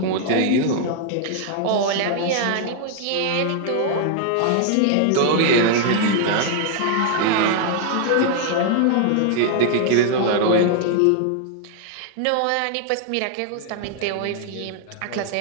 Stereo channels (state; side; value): different; both; correlation 0.00